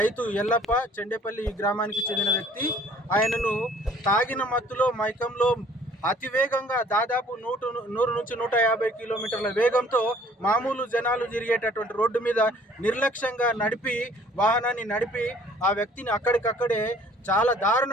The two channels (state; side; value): normal; both; correlation 0.55